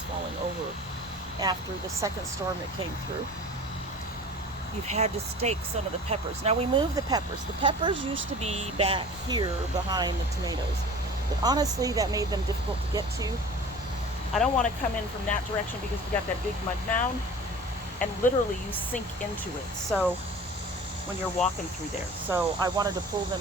falling over after the second storm that came through. You've had to stake some of the peppers. Now we moved the peppers. The peppers used to be back here behind the tomatoes, but honestly that made them difficult to get to. I don't want to come in from that direction because we got that big mud mound, and literally you sink into it so when you're walking through there. So I wanted to pull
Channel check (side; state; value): both; normal; correlation 0.41